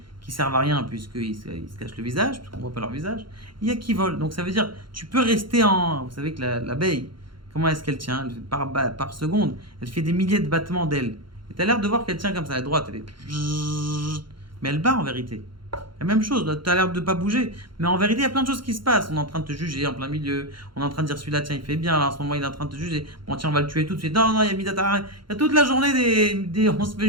qui servent à rien puisqu'ils se cachent le visage, puisqu'on ne voit pas leur visage. Il y a qui volent. Donc ça veut dire, tu peux rester en... Vous savez que l'abeille, comment est-ce qu'elle tient? Par seconde, elle fait des milliers de battements d'ailes. Et tu as l'air de voir qu'elle tient comme ça, à droite, elle est... Mais elle bat en vérité. La même chose, tu as l'air de ne pas bouger. Mais en vérité, il y a plein de choses qui se passent. On est en train de te juger en plein milieu. On est en train de dire celui-là, tiens, il fait bien. Là, en ce moment, il est en train de te juger. Bon, tiens, on va le tuer tout de suite. Non, non, il y a Midatara. Il y a toute la journée on se fait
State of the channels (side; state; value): left; late; 0.73 ms